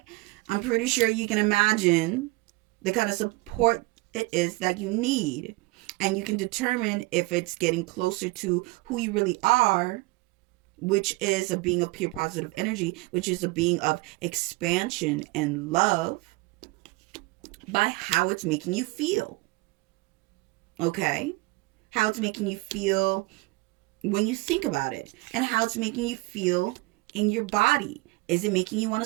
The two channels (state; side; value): quieter; left; 23.3 dB